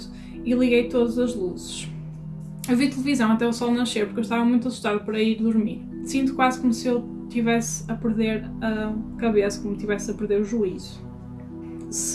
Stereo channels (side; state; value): both; identical; correlation 1.00